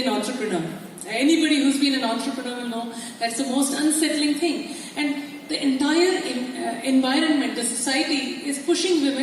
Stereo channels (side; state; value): both; identical; correlation 1.00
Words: an entrepreneur? Anybody who's been an entrepreneur will know that's the most unsettling thing. And the entire environment, the society is pushing